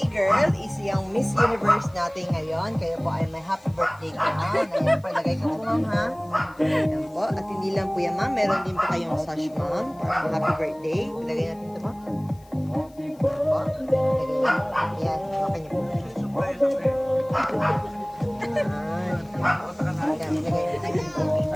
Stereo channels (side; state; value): left; noise; hiss, 29 dB below the sound